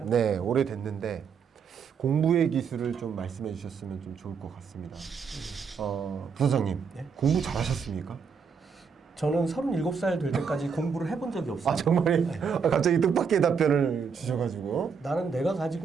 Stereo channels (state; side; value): quieter; left; 6.1 dB